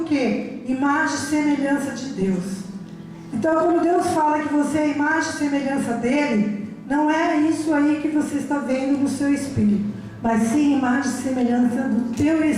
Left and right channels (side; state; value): both; identical; correlation 1.00